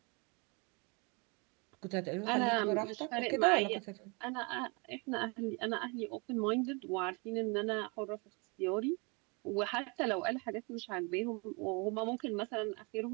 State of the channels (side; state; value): left; quieter; 31.0 dB